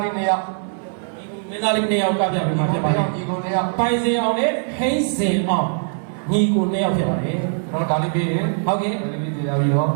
လေးနှစ်ယောက်မင်းသားလေးနှစ်ယောက်ကပြမှုမှာဖြစ်ပါတယ်ညီကိုနှစ်ယောက်ပိုင်စီအောင်နဲ့ဟိစင်အောင်ညီကိုနှစ်ယောက်ဖြစ်ပါတယ်ကျွန်တော်ဒါလေးပြီးရင်ဟုတ်ကဲ့ဒါလေးပြီးကြပြီးတော့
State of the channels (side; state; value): left; silent; 61 dB below the other